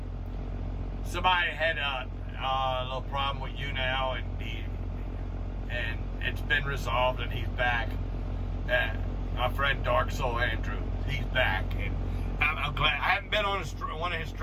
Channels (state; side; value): identical; both; correlation 1.00